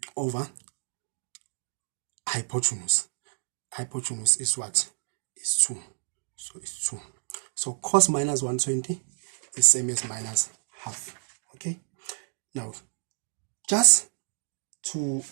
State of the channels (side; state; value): left; silent; digital silence